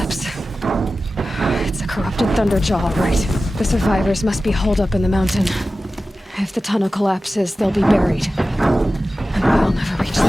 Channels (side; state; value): both; normal; correlation 0.95